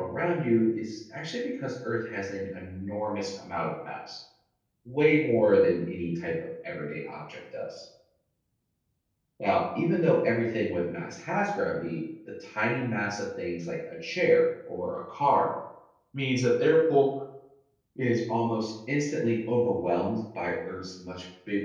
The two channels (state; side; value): identical; both; correlation 1.00